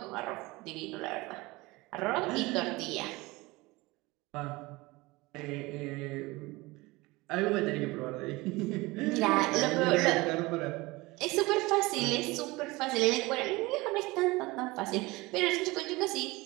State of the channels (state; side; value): quieter; left; 22.1 dB